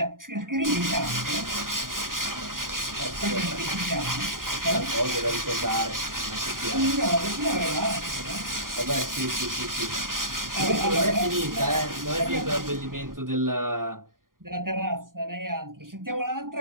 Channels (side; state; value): left; late; 0.91 ms